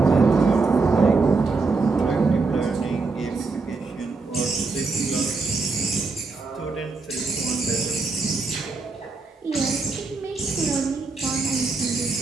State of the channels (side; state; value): left; quieter; 4.1 dB